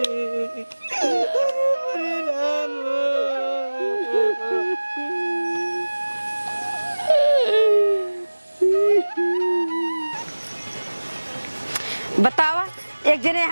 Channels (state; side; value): inverted; both; correlation -1.00